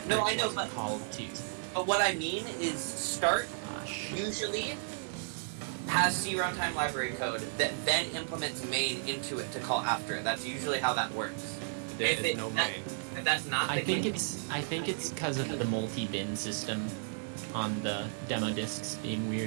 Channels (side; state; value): left; silent; digital silence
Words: No, I it's know, but- called to. But what I mean is start Gosh. usually has C runtime library code that then implements main into it to call after it. That's usually how that works. There if is it- no that- main. If that's not the I think case, it's because of the multi-bin system on the demo discs being